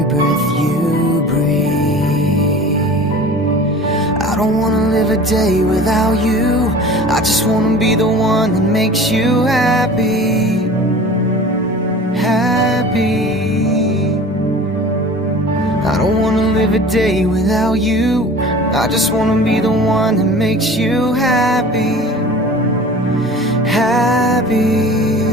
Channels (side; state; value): both; normal; correlation 0.40